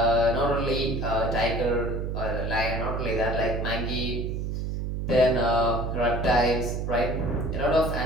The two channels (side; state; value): right; noise; hum, 3 dB below the sound